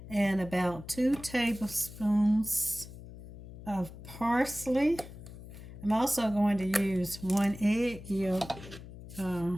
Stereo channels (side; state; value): left; noise; hum, 14 dB below the sound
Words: and about 2 tablespoons of parsley. I'm also going to use 1 egg yolk